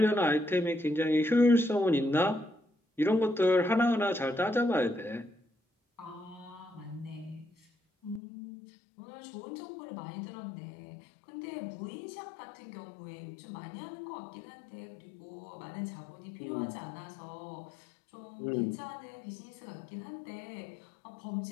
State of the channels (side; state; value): right; drops out; at 8.2 s